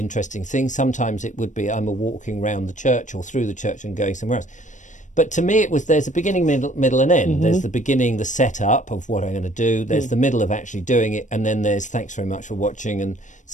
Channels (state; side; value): late; right; 0.36 ms